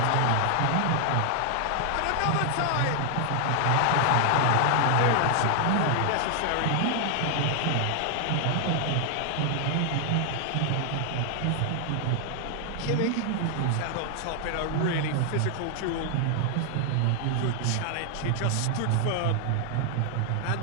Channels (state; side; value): different; both; correlation 0.00